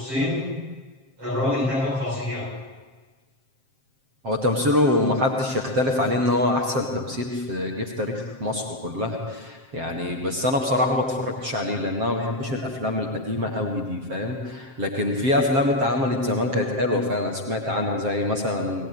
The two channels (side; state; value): left; late; 7.6 ms